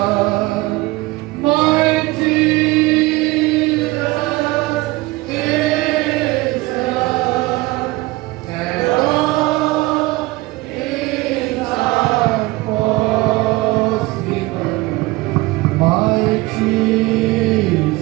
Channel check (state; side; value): quieter; left; 20.8 dB